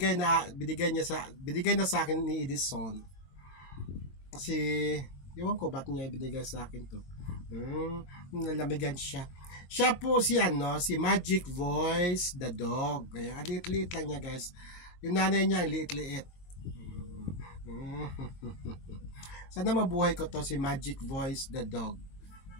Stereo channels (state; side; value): late; right; 22 ms